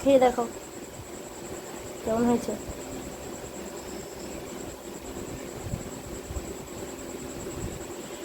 খেয়ে দেখো কেমন হয়েছে।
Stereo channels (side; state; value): both; identical; correlation 1.00